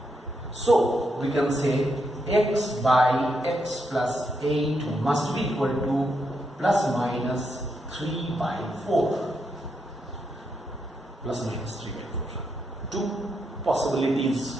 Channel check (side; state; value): both; normal; correlation 0.81